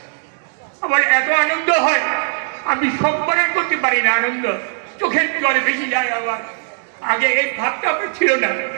আমার এত আনন্দ হয়, আমি সম্পর্ক করতে পারি না। আনন্দ চোখের জলে বেশি যায় আমার। আগে এই ভাবটা আমার ছিল না,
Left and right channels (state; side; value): silent; left; digital silence